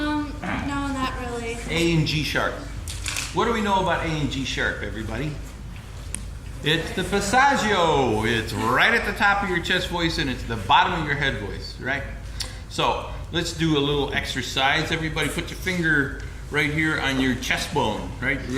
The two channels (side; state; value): both; identical; correlation 1.00